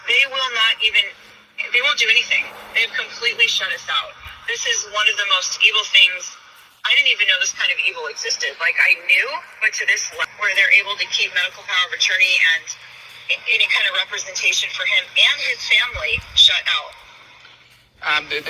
They won't do anything. They've completely shut us out. This is one of the most evil things. I didn't even know this kind of evil existed. Like, I knew, but to this level, where they're able to keep medical power of attorney and any kind of representation for him and his family shut out.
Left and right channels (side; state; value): both; identical; correlation 1.00